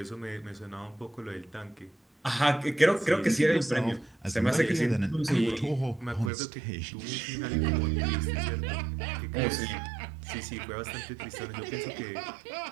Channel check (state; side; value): drops out; left; at 6.3 s